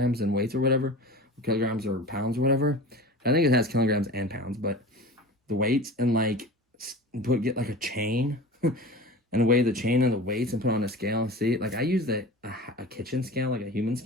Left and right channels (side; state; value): both; normal; correlation 0.36